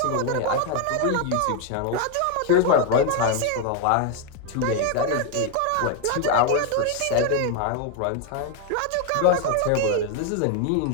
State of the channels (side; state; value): both; different; correlation 0.00